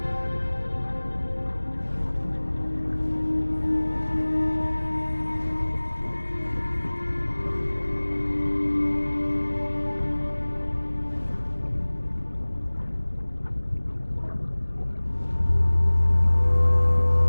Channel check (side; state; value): both; inverted; correlation -1.00